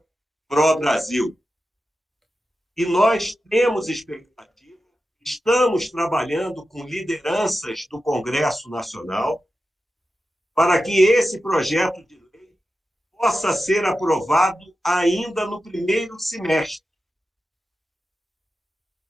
Pro Brasil. E nós temos expectativa, estamos trabalhando com lideranças do Congresso Nacional para que esse projeto de lei possa ser aprovado ainda no primeiro semestre.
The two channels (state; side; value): normal; both; correlation 0.92